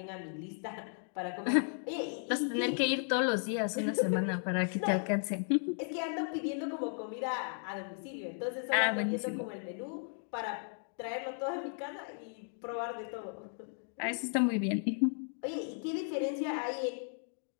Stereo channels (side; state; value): right; silent; 54 dB below the other